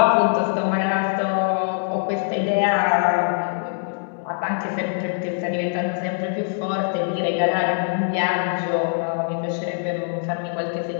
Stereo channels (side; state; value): right; silent; digital silence